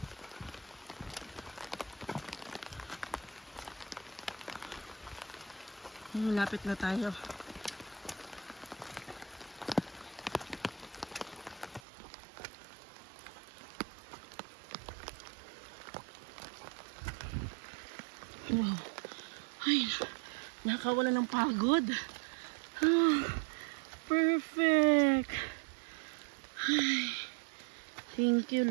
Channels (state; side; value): drops out; left; at 11.8 s